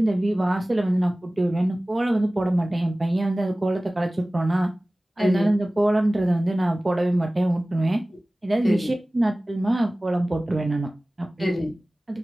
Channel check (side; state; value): both; normal; correlation 0.98